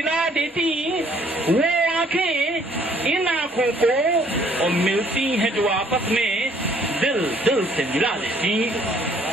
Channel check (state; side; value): normal; both; correlation 0.62